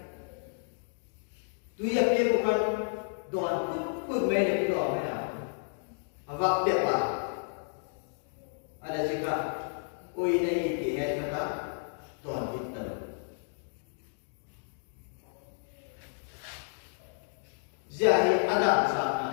Tuya pia bukan don pun mana kita mana. Awak dia apa? Ada jika oi nahi dia kata don kita. Jadi ada sana.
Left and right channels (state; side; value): silent; right; digital silence